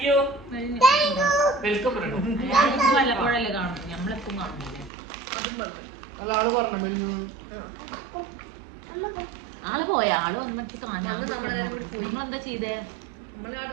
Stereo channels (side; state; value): left; drops out; at 4.9 s